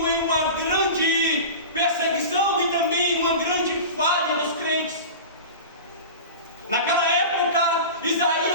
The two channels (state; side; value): inverted; both; correlation -0.31